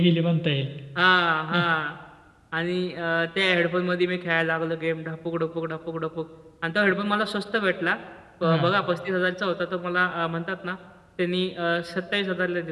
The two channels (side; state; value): both; identical; correlation 1.00